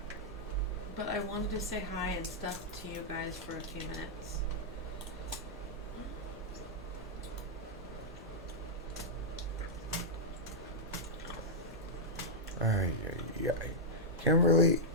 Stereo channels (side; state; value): both; normal; correlation -0.07